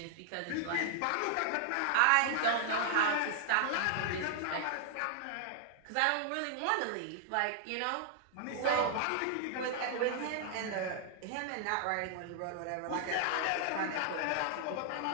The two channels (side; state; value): both; different; correlation 0.00